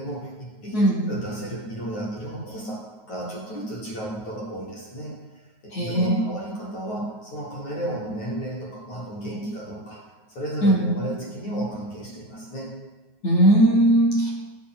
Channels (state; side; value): late; right; 9.4 ms